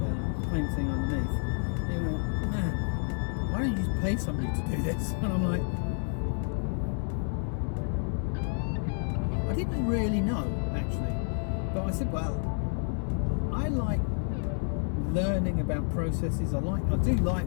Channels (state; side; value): silent; right; 56 dB below the other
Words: painting underneath, he went, man, why don't you just pay somebody to do this? And I'm like, I didn't really know actually, but I said, well, I like learning about processes. I do like